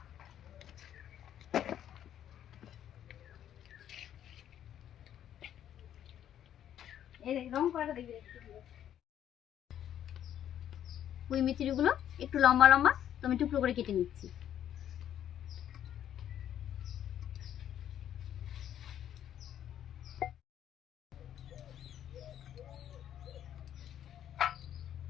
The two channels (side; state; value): right; quieter; 10.5 dB